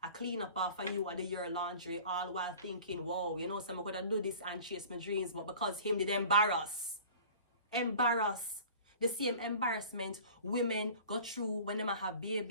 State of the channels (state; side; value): inverted; both; correlation -0.44